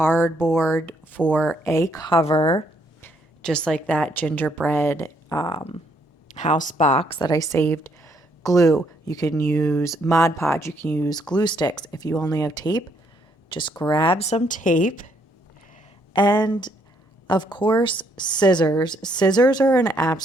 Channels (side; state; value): both; normal; correlation 0.71